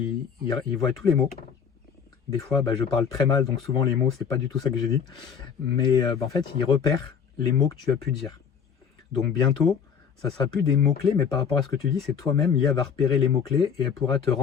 voient tous les mots. Des fois, je parle très mal, donc souvent les mots, c'est pas du tout ça que j'ai dit. Mais en fait, ils repèrent les mots que tu as pu dire. Donc bientôt, ça sera plus des mots-clés, mais par rapport à ce que tu dis, c'est toi-même, l'IA va repérer les mots-clés et elle pourra te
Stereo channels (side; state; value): right; quieter; 7.0 dB